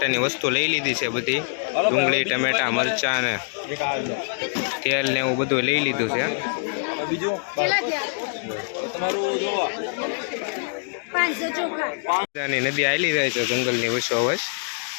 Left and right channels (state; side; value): silent; right; digital silence